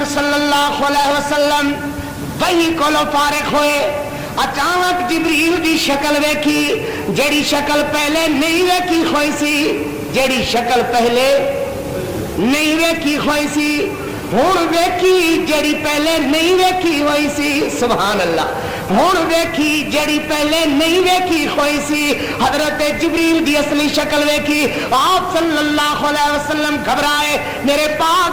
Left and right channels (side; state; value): both; identical; correlation 1.00